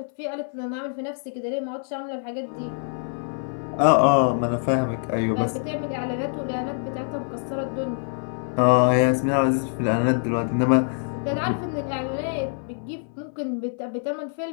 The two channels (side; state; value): right; silent; 62 dB below the other